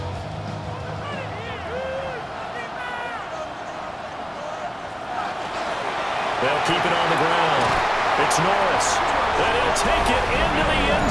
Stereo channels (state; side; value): identical; both; correlation 1.00